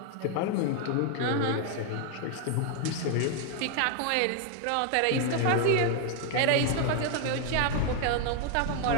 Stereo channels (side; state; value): both; different; correlation 0.00